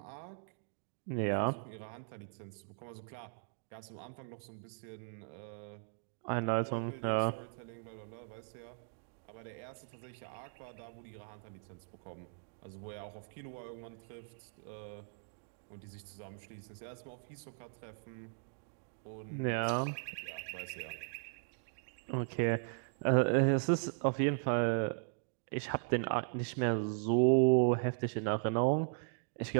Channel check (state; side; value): silent; left; digital silence